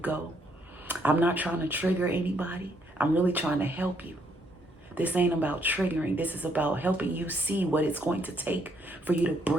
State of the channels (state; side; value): normal; both; correlation 0.71